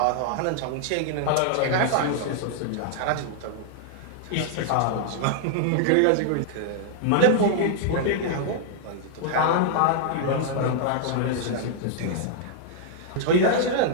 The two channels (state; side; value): different; both; correlation -0.01